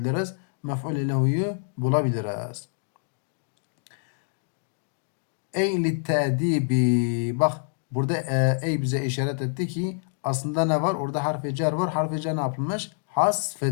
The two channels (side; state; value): right; silent; digital silence